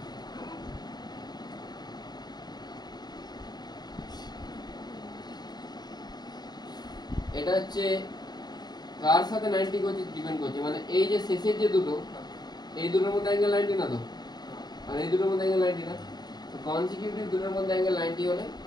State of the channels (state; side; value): late; right; 0.20 ms